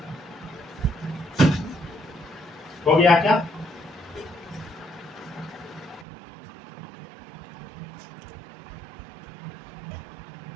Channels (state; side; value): drops out; left; at 6.1 s